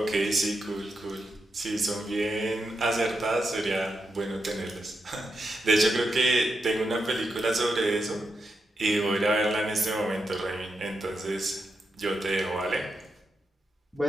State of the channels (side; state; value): both; normal; correlation 0.86